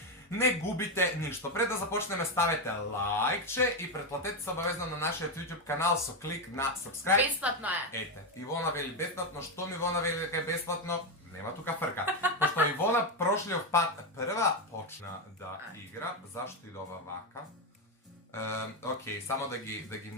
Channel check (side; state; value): both; normal; correlation 0.08